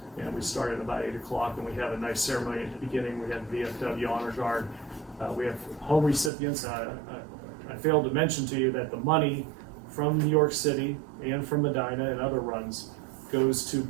And we started about 8 o'clock, and we have a nice ceremony at the beginning. We had VFW Honor Guard. We have home recipients. I failed to mention to you that the money from New York City and from Medina and other runs goes to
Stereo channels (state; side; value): drops out; left; at 6.3 s